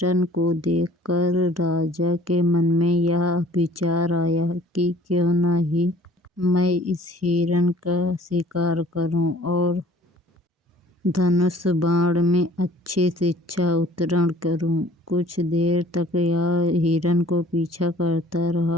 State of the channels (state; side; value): normal; both; correlation 0.52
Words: को देखकर राजा के मन में यह विचार आया कि क्यों न ही मैं इस हिरन का शिकार करूं और धनुष बाण में अच्छी शिक्षा उत्तीर्ण करूं। कुछ देर तक यह हिरन को पीछा करता